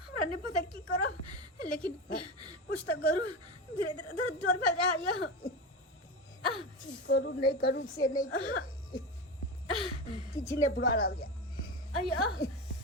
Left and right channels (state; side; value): normal; both; correlation 0.21